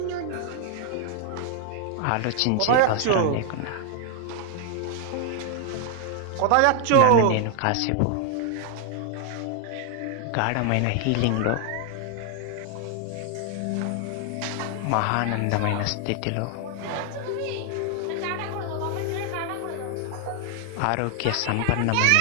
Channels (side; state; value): both; different; correlation 0.00